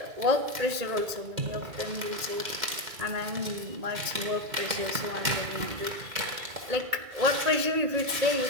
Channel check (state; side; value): late; left; 2.3 ms